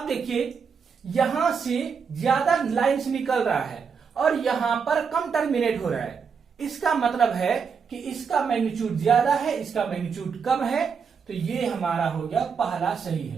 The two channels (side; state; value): left; quieter; 6.1 dB